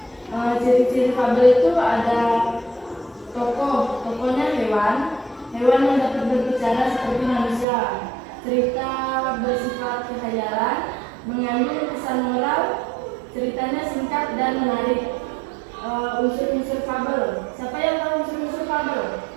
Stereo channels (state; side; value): drops out; left; at 7.7 s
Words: Ciri-ciri fabel itu ada tokohnya hewan yang dapat berbicara seperti manusia. Cerita bersifat kekhayalan, mengandung pesan moral, ceritanya singkat dan menarik. Unsur-unsur fabel. Siapa yang tahu unsur-unsur fabel?